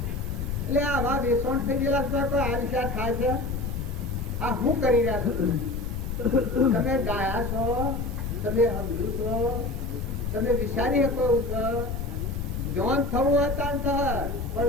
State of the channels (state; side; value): noise; left; rumble, 4 dB below the sound